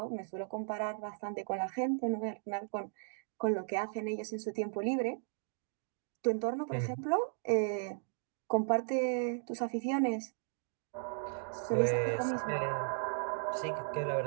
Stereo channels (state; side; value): silent; left; digital silence